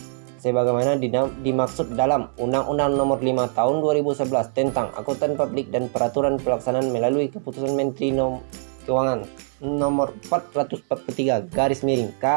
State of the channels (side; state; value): left; silent; 59 dB below the other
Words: sebagaimana dimaksud dalam Undang-Undang Nomor 5 Tahun 2011 tentang Akuntan Publik dan Peraturan Pelaksanaan melalui Keputusan Menteri Keuangan Nomor 443